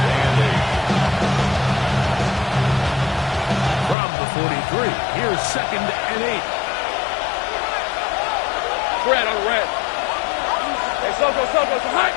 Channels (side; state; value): right; drops out; at 4.0 s